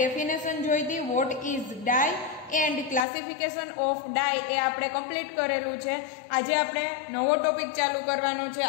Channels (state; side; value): drops out; right; at 3.1 s